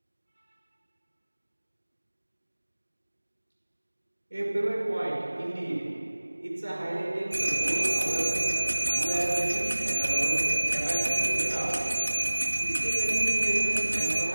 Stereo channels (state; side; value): inverted; both; correlation -1.00